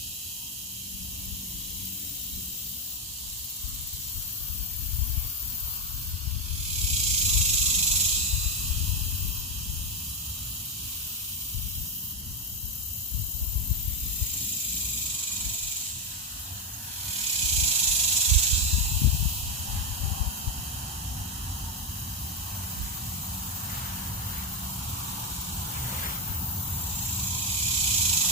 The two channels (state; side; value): normal; both; correlation 0.08